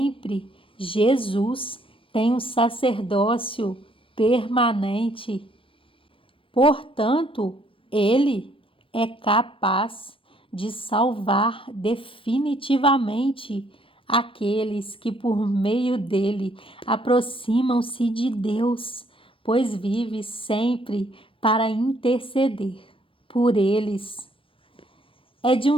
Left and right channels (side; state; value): right; late; 0.25 ms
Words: Jesus tem um sacerdócio permanente. Portanto, ele é capaz de salvar definitivamente aqueles que por meio dele aproximam-se de Deus, pois vive sempre para interceder por eles. É de um